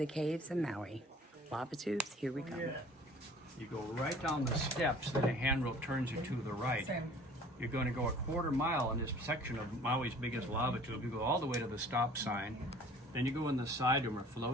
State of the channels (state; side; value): normal; both; correlation 0.49